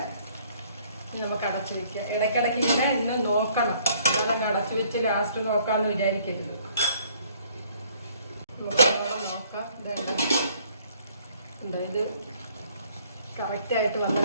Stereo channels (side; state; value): both; inverted; correlation -0.61